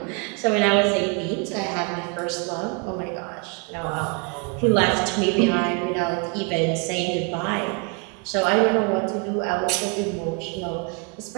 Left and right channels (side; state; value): left; quieter; 33.7 dB